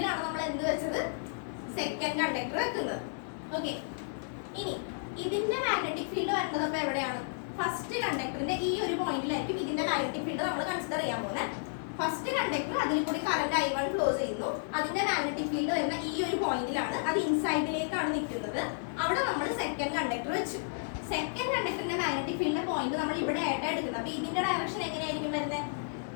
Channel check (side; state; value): right; silent; 55 dB below the other